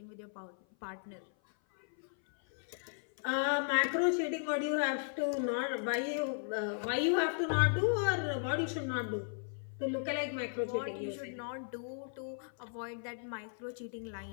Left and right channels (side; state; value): right; silent; 54 dB below the other